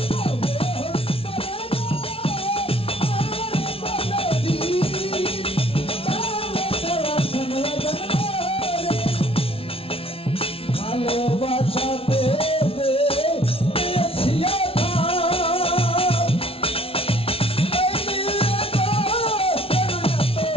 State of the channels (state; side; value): late; right; 0.26 ms